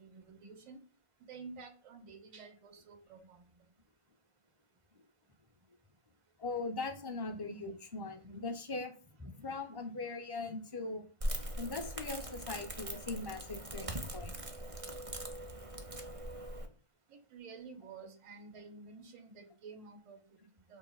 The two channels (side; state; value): left; late; 1.6 ms